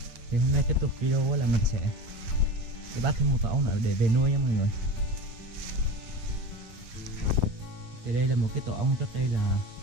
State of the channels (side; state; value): left; late; 8.8 ms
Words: Thì hôm nay tiếp tục video là mình sẽ đi bắt thêm một tổ ong nữa để về nuôi nha mọi người. Thì đây là một cái tổ ong trước đây là